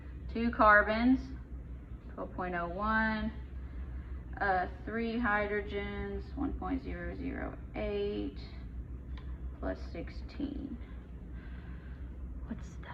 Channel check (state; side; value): identical; both; correlation 1.00